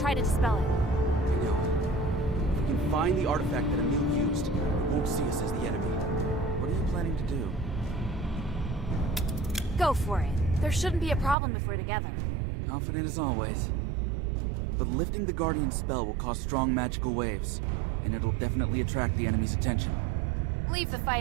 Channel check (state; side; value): drops out; left; at 11.4 s